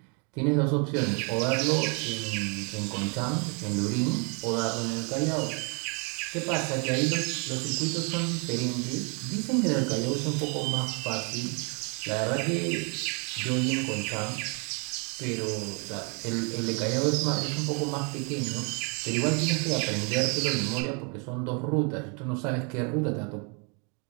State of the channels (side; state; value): left; quieter; 35.4 dB